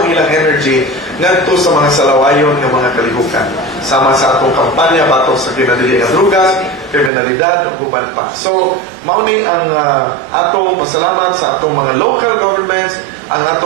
ilang energy ngadto sa mga salawayon ng mga kalihukan sama sa atong kampanya batok sa kinadili nga drugas, kriminalidad ug uban pa. So mao ni ang atong pasalamat sa atong mga local governments, ang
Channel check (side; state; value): left; drops out; at 7.1 s